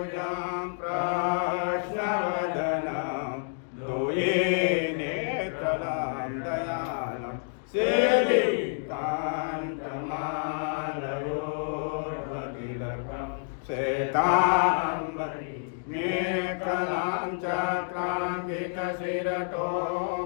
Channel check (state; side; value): silent; right; digital silence